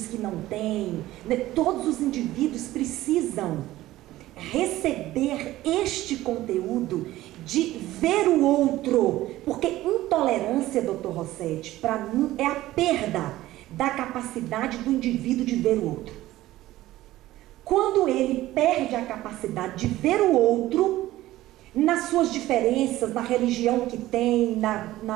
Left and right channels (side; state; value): left; quieter; 15.9 dB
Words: que não têm, né, todos os indivíduos precisam receber este conteúdo de ver o outro, porque intolerância, doutor Rossetti, para mim é a perda da capacidade do indivíduo de ver o outro. Quando ele perde a capacidade de ver o outro, nas suas diferenças, na religião que tem,